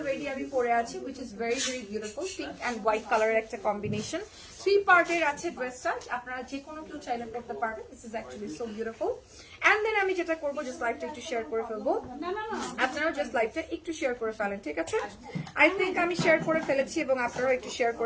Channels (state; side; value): identical; both; correlation 1.00